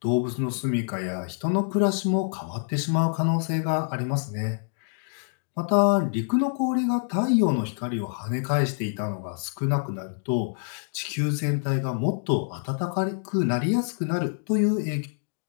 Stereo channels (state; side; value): silent; right; digital silence